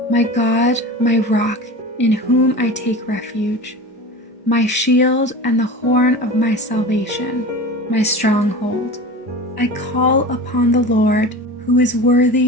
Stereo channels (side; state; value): both; normal; correlation 0.33